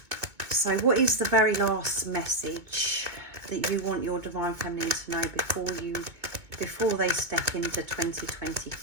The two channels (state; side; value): late; left; 2.2 ms